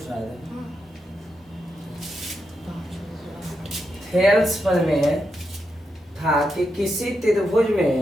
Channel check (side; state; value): both; normal; correlation 0.84